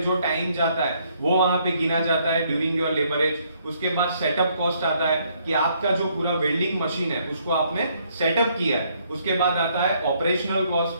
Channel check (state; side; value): inverted; both; correlation -0.69